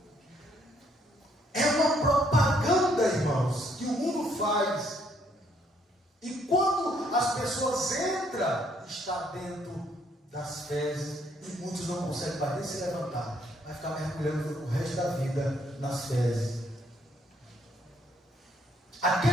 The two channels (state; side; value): normal; both; correlation 0.68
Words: É uma propaganda, irmãos, que o mundo faz. E quando as pessoas entram, está dentro das fezes, e muitos não conseguem mais nem se levantar. Vai ficar mergulhando o resto da vida nas fezes.